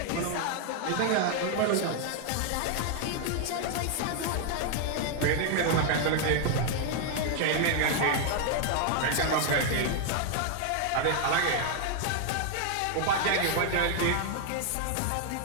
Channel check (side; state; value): both; different; correlation 0.00